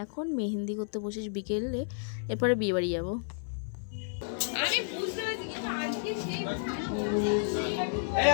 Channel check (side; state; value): right; silent; 57 dB below the other